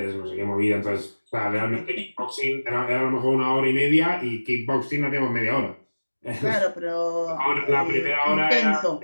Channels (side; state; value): both; inverted; correlation -1.00